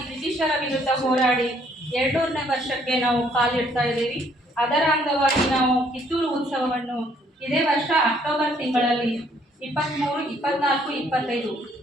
ಬ್ರಿಟಿಷರ ವಿರುದ್ಧ ಹೋರಾಡಿ 200ನೇ ವರ್ಷಕ್ಕೆ ನಾವು ಕಾಲಿಡ್ತಾ ಇದ್ದೀವಿ. ಅದರ ಅಂಗವಾಗಿ ನಾವು ಕಿತ್ತೂರು ಉತ್ಸವವನ್ನು ಇದೇ ವರ್ಷ ಅಕ್ಟೋಬರ್ ತಿಂಗಳಲ್ಲಿ 23, 24, 25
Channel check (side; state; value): both; normal; correlation 0.65